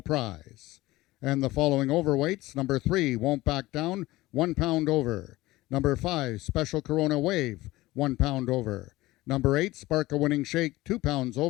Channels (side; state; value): right; quieter; 18.6 dB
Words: And the following overweights: number 3, Won't Back Down, 1 pound over. Number 5, Special Corona Wave, 1 pound over. Number 8, Spark a Winning Shake, 2 pounds